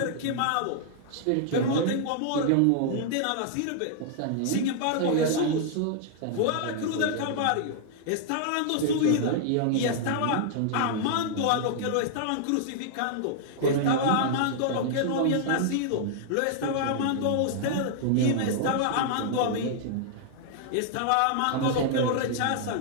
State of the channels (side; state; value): both; different; correlation -0.01